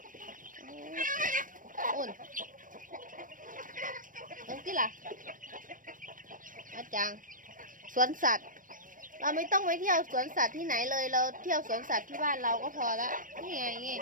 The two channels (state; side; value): late; left; 0.39 ms